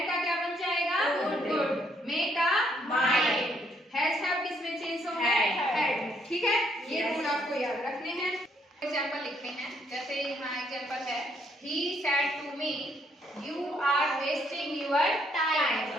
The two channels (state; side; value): normal; both; correlation 0.70